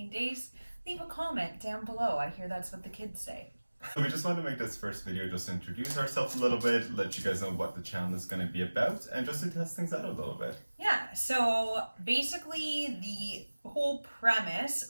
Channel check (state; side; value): inverted; both; correlation -1.00